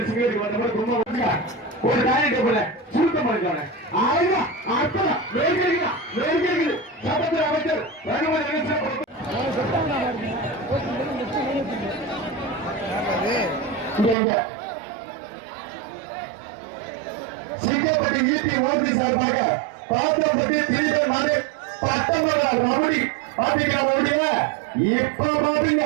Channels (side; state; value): left; drops out; at 14.2 s